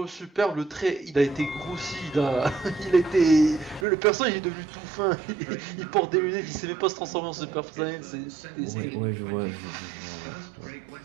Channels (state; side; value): drops out; left; at 3.9 s